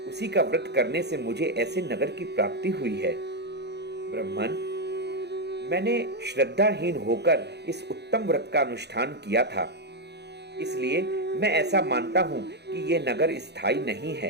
उसी का व्रत करने से मुझे ऐसे नगर की प्राप्ति हुई है। ब्राह्मण, मैंने श्रद्धाहीन होकर इस उत्तम व्रत का अनुष्ठान किया था, इसलिए मैं ऐसा मानता हूं कि यह नगर स्थायी नहीं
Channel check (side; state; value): left; late; 0.49 ms